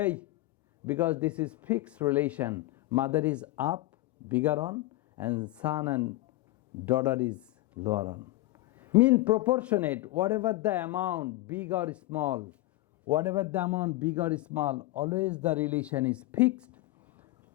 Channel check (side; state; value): right; quieter; 18.3 dB